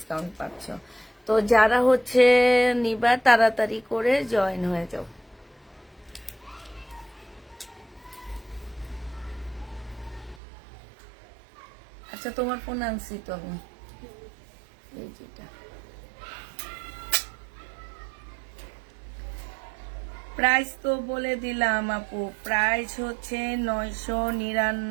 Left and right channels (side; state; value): left; drops out; at 10.4 s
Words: পাচ্ছ। তো যারা হচ্ছে নিবা তাড়াতাড়ি করে জয়েন হয়ে যাও। আচ্ছা, তোমার ফোন আনছি তো আমি, এই যেটা। প্রাইস তো বলে দিলাম আপু, প্রাইস হচ্ছে